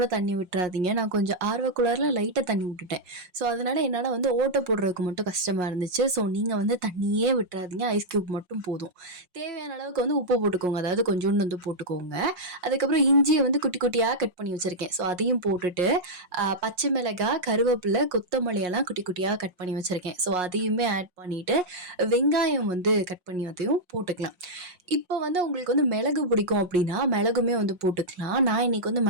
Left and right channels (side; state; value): left; late; 5.6 ms